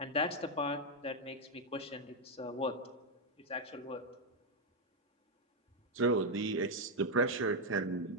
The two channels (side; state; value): both; normal; correlation 0.01